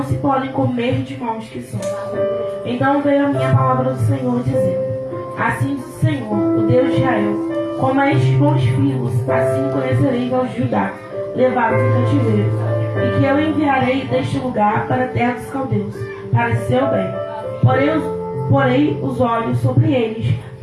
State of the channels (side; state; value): both; identical; correlation 1.00